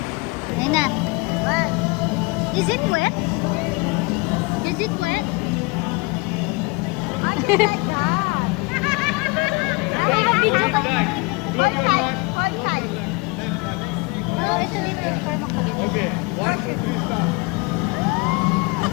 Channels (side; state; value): right; quieter; 27.5 dB